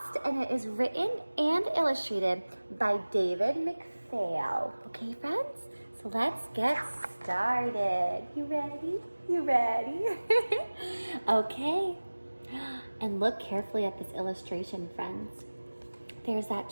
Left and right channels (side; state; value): both; inverted; correlation -1.00